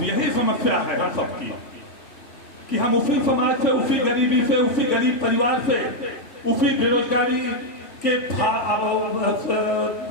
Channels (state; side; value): late; right; 3.5 ms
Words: यही समस्या है हम सबकी कि हम उसी समाज से, उसी गरीबी से, उसी गरीब परिवार से, उसी बेरोजगारी के